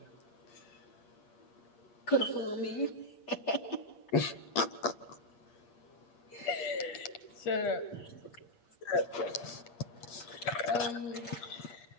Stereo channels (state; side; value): late; right; 8.5 ms